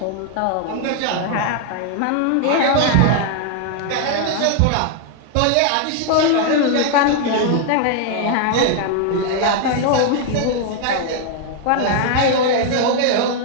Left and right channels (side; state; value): both; different; correlation 0.00